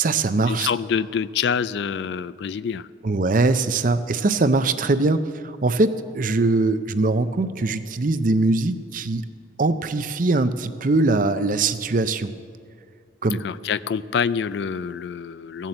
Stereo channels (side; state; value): both; normal; correlation 0.49